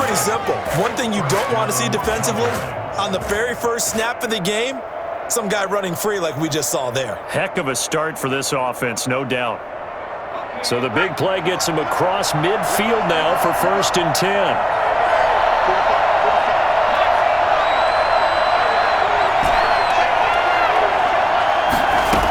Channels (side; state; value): both; identical; correlation 1.00